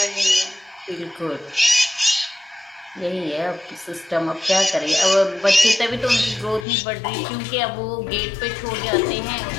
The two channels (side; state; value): right; drops out; at 6.7 s